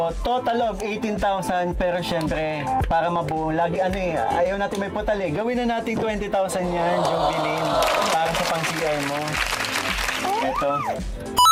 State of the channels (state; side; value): identical; both; correlation 1.00